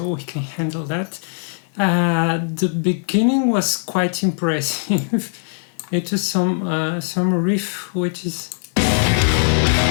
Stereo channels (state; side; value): silent; right; 66 dB below the other